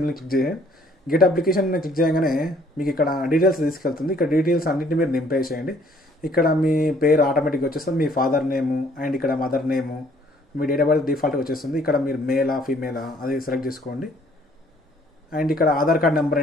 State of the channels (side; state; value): both; normal; correlation 0.61